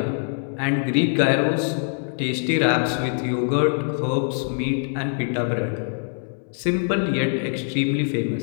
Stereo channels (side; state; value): right; silent; 63 dB below the other